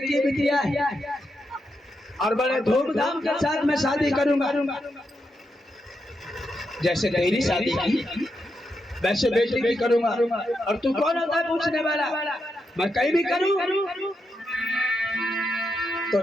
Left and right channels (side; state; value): both; normal; correlation 0.84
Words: ही बिटिया है, और बड़े धूमधाम के साथ मैं शादी करूंगा। जैसे तेरी शादी की वैसे बेटी की करूंगा। और तू कौन होता है पूछने वाला? मैं कहीं भी करूं। तो